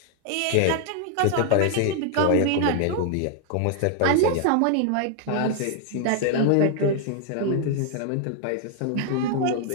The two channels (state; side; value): different; both; correlation 0.00